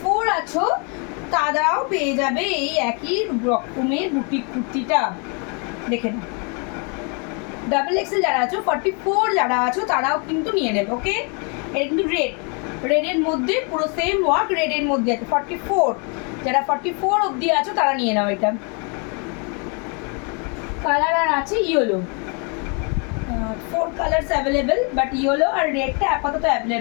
আছো তারাও পেয়ে যাবে এই একই রকমের বুটিক কুর্তিটা, দেখে নাও। ডাবল এক্সেল যারা আছো, 44 যারা আছো তারাও কিন্তু নিয়ে নেবে। ওকে, এটা কিন্তু রেডের মধ্যে পুরো সেম ওয়ার্ক, রেডের মধ্যে আছে। 44 যারা 44 অবধি আছো তারা নিয়ে নাও। এটা কালার আর আছে yellow, 4 colours available, but yellow আর রেডটা আপাতত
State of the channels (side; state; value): right; quieter; 35.7 dB